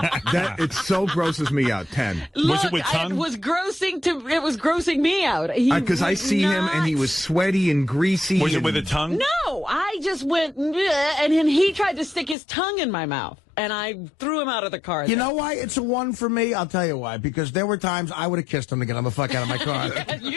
it so grosses me out. 10. Look, it with tongue? It was grossing me out. Because I see him and he was sweaty and greasy. Was it with a tongue? No, I just went, and then he tried to stick his tongue in my mouth, and I threw him out of the car. You know why it's a 1 for me? I'll tell you why. Because there were times I would have kissed him to get him the fuck out of my car.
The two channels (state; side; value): drops out; right; at 12.4 s